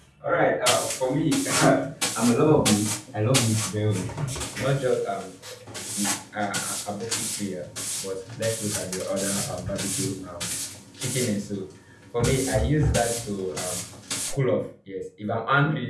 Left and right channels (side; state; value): both; identical; correlation 1.00